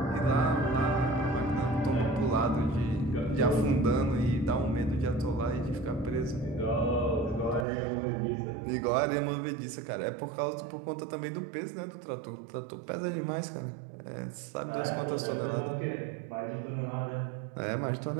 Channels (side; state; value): left; drops out; at 7.7 s